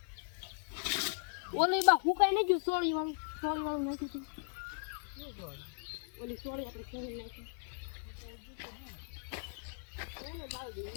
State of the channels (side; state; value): right; silent; digital silence